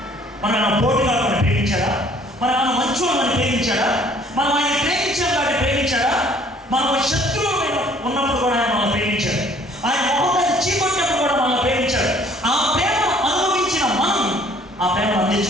మన పోటీగాళ్ళని ప్రేమించాడా? మన మంచోళ్ళని ప్రేమించాడా? మనం ఆయన ప్రేమించాం కాబట్టి ప్రేమించాడా? మనం శత్రువులు ఉన్నప్పుడు కూడా ఆయన మనల్ని ప్రేమించాడు. ఆయన మొహం చీకొట్టినప్పుడు కూడా మనల్ని ప్రేమించాడు. ఆ ప్రేమను అనుభవించిన మనం ఆ ప్రేమను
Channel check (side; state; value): both; normal; correlation 0.57